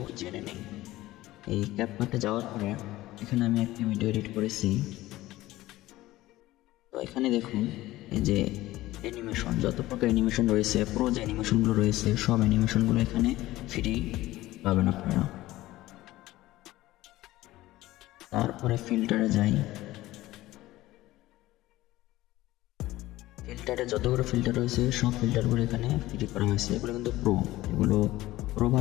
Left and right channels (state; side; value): quieter; right; 16.9 dB